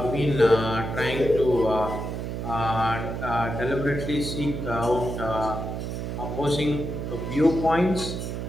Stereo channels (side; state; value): right; noise; hum, 4 dB below the sound